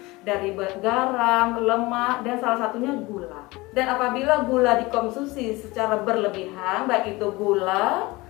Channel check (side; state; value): right; quieter; 21.9 dB